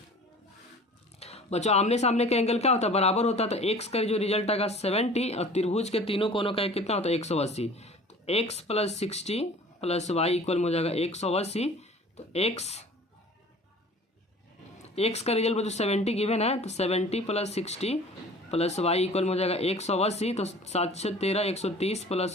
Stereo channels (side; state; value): both; normal; correlation 0.45